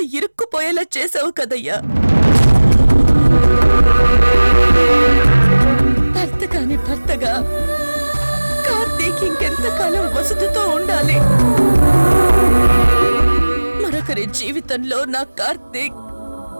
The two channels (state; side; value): inverted; both; correlation -1.00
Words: ఇరుక్కుపోయేలా చేసావు కదయ్యా. భర్త కాని భర్తగా కార్తీక్ ఇంకెంతకాలం వసుధతో ఉండాలి? మరొకరి జీవితంలో నా కార్తీక్